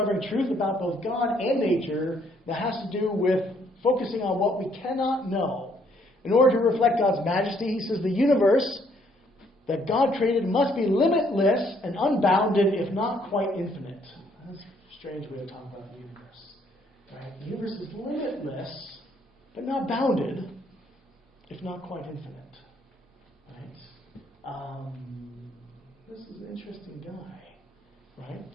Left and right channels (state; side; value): normal; both; correlation 0.67